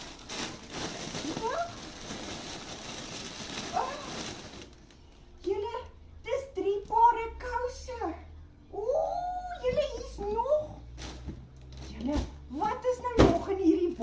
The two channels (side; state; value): both; identical; correlation 1.00